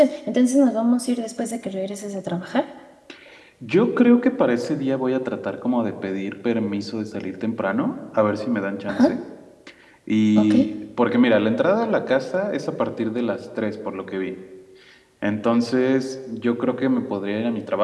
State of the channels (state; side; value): identical; both; correlation 1.00